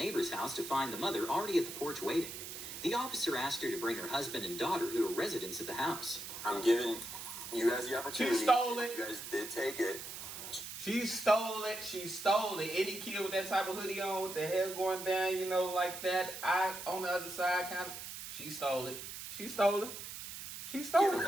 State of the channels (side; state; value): right; noise; hiss, 9 dB below the sound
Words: house to find the mother already at the porch waiting. The officer asked her to bring her husband and daughter, who are residents at the house. I'm giving you guys the opportunity. She stole it. You guys did take it. She stole it. She stole it. Any kid with that type of hoodie on with the hair going down, you know, like that. I on the other side, kind of. She stole it. She stole it. She stole Give it it.